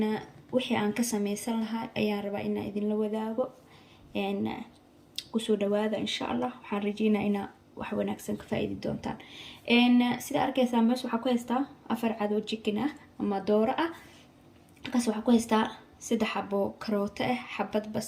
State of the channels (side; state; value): both; identical; correlation 1.00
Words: wixii aan ka sameysan lahaa ayaan rabaa inaan idinla wadaago. kusoo dhawaada insha Allah. waxaan rajeynayaa inaa wax wanaagsan ka faa'iidi doontaan. sida arkaysaan meesha waxaa ku haystaa afar cad oo chicken ah ama dooro ah. halkaas waxaa ku haystaa 3 xabo karooto ah, xabad